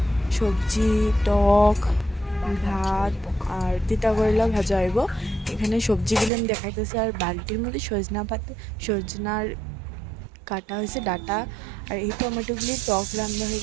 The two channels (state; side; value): drops out; left; at 6.3 s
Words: সবজি, টক, ভাত আর তিতা করলা ভাজা হইব। এখানে সবজিগুলো আমি দেখাইতেছি। আর বালতির মধ্যে সজনার কাটা হয়েছে ডাটা। আর এই টমেটোগুলি টক রান্না